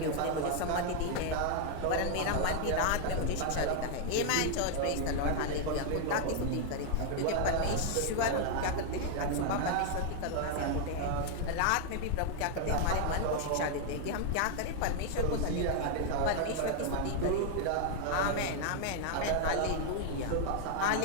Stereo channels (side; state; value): both; different; correlation 0.00